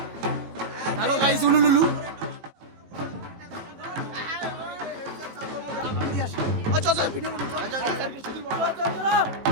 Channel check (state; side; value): late; left; 18 ms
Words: হ্যালো গাইস, উলুলুলু চল ভিডিও